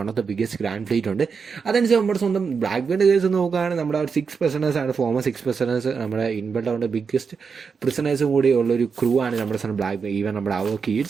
one of the biggest grand fleet ഉണ്ട്. അതനുസരിച്ച് നമ്മുടെ സ്വന്തം ബ്ലാക്ക് ബീൻ്റെ കേസ് നോക്കുകയാണെങ്കിൽ നമ്മുടെ 6 prisoners ആണ് ഫോമർ 6 prisoners നമ്മുടെ ഇൻബിൽഡ് ബിഗ്ഗസ്റ്റ് പ്രിസണേഴ്സും കൂടി ഉള്ളൊരു ക്രൂ ആണ് നമ്മുടെ സ്വന്തം ബ്ലാക്ക് ബീ. ഈവൻ നമ്മുടെ അവർക്ക്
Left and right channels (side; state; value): left; quieter; 5.6 dB